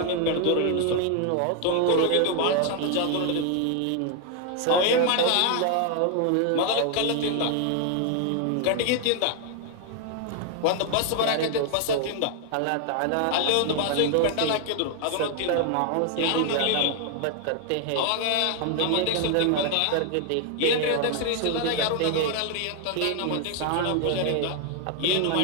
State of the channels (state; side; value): different; both; correlation 0.00